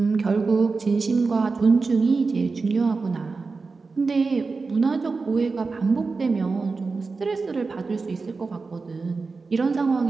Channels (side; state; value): left; quieter; 4.2 dB